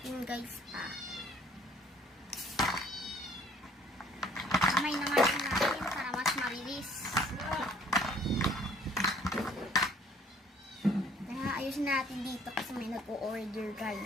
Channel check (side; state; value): both; normal; correlation 0.58